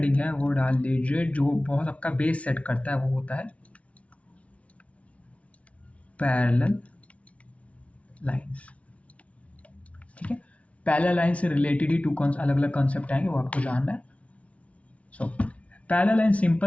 है वो डाल लीजिए, जो बहुत आपका बेस सेट करता है वो होता है पैरेलल लाइंस। ठीक है, पैरेलल लाइन से रिलेटेड ही अलग अलग कॉन्सेप्ट आएंगे, वो आपको जानना है। सो पैरेलल लाइन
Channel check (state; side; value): late; right; 0.064 ms